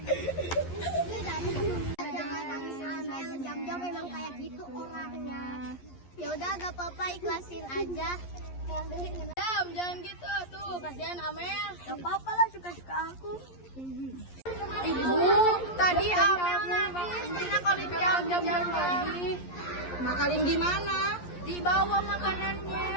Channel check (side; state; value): right; late; 11 ms